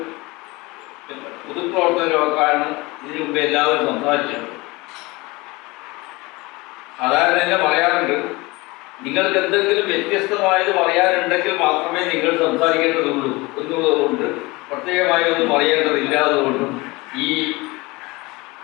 പൊതുപ്രവർത്തകരുമൊക്കെയാണ് ഇതിനു മുമ്പ് എല്ലാവരും സംസാരിച്ചത്. സാധാരണ തന്നെ പറയാറുണ്ട്, നിങ്ങൾക്ക് എന്തെങ്കിലും വ്യത്യസ്തമായത് പറയാനുണ്ടെങ്കിൽ മാത്രമേ നിങ്ങൾ സംസാരിക്കേണ്ടതുള്ളൂ എന്നുള്ളതുകൊണ്ട് പ്രത്യേകമായി ഒന്നും പറയേണ്ടതില്ലാത്തതുകൊണ്ടും ഈ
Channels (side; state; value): right; quieter; 23.2 dB